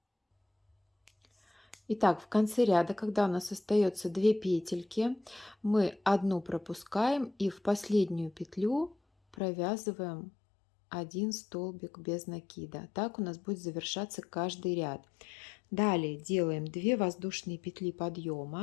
Итак, в конце ряда, когда у нас остается 2 петельки, мы одну пропускаем и в последнюю петлю провязываем 1 столбик без накида. Так у нас будет завершаться каждый ряд. Далее делаем 2 воздушные петли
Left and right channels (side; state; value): right; drops out; at 9.3 s